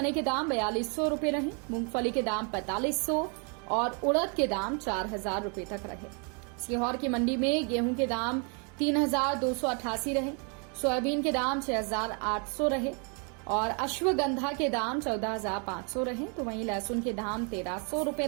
के दाम 4,200 रुपए रहे, मूंगफली के दाम 4,500 और उड़द के दाम 4,000 रुपए तक रहे। सीहोर की मंडी में गेहूं के दाम 3,288 रहे, सोयाबीन के दाम 6,800 रहे और अश्वगंधा के दाम 14,500 रहे, तो वहीं लहसुन के दाम 1,300 रुपए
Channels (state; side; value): quieter; left; 37.4 dB